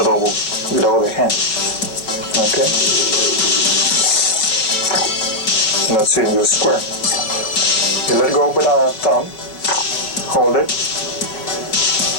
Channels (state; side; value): late; right; 5.5 ms